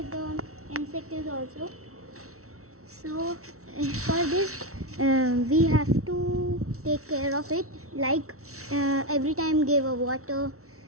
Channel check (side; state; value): left; late; 0.63 ms